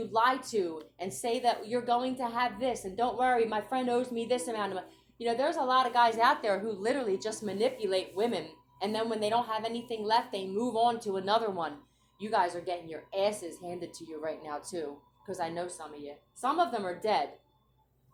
lie to and say that you're going to have this, and don't worry, my friend owes me this amount of money? You know, there's a lot of guys out there who literally just manipulate women, and then when they don't have anything left, they move on to another one. You guys are getting your asses handed to you right now too, because I know some of you. Some of them are dead.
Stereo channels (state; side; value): identical; both; correlation 1.00